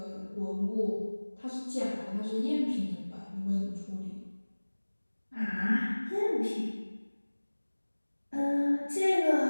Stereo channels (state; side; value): inverted; both; correlation -1.00